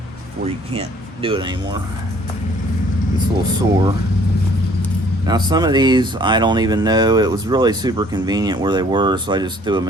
where you can't do it anymore. It's a little sore. Now some of these I don't even know. It was really super convenient where they were, so I just threw them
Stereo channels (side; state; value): both; normal; correlation 0.58